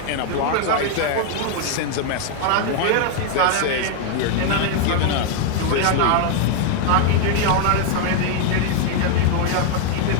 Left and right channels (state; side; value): different; both; correlation 0.00